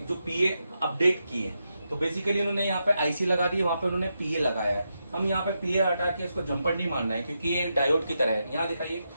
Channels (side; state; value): both; inverted; correlation -0.85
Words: जो पीए अपडेट किए, तो बेसिकली इन्होंने यहाँ पे आईसी लगा दी है, वहां पे उन्होंने पीए लगाया है। हम यहाँ पे पीए हटा के इसको जंपर नहीं मानना है, क्योंकि ये डायोड की तरह है। यहाँ दिखाइए।